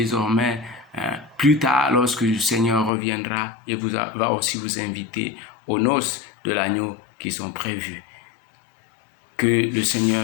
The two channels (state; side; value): drops out; right; at 2.9 s